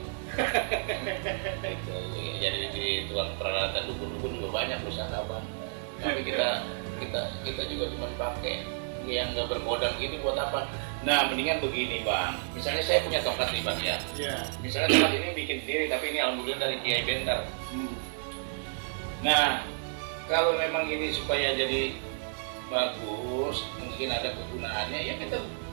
Gitu. Jadi di tukang peralatan dukun-dukun juga banyak pusaka Bang. Tapi kita juga cuma pakai yang nggak berkodam gini buat apa? Nah, mendingan begini Bang. Misalnya saya punya tongkat nih Bang ya. Iya. Misalnya tongkat ini bikin sendiri, tapi ini alhamdulillah dari Kiai Bentar. Nah, kalau memang ini supaya jadi bagus, mungkin ada kegunaannya, ya kita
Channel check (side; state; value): left; silent; 56 dB below the other